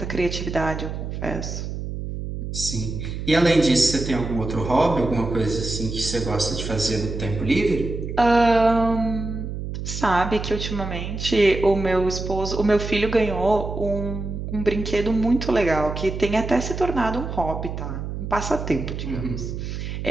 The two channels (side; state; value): right; noise; hum, 6 dB below the sound